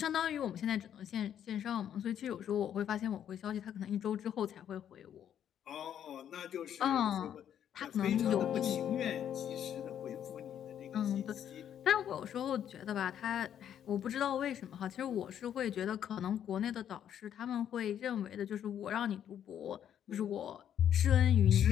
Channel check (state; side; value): quieter; right; 9.7 dB